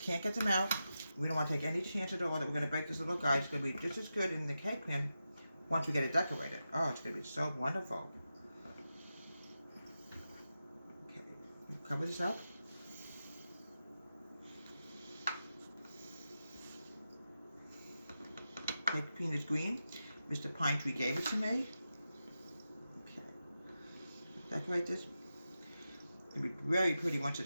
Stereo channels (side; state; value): both; inverted; correlation -0.90